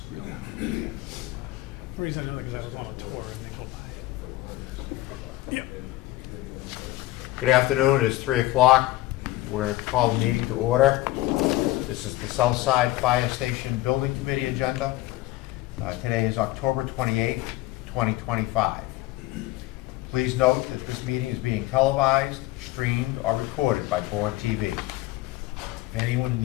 you have. The reason I know that because I was on a tour and they go by it. Yep. Good afternoon. It's 3 o'clock. We're going to call the meeting to order. This is the Southside Fire Station Building Committee agenda. Today is October 28th, 2025. Please note that this meeting is being televised, streamed, or recorded by Bourne TV. If anyone in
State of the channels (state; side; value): quieter; right; 17.3 dB